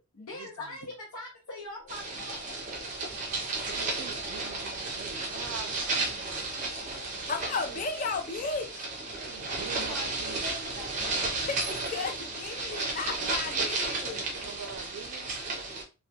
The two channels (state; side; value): normal; both; correlation -0.06